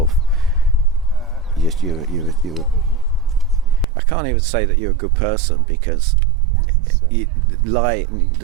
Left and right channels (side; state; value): left; drops out; at 3.9 s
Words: you I can't even say that you're a good person, because the